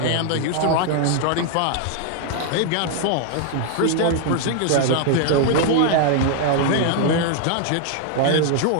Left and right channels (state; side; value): different; both; correlation 0.00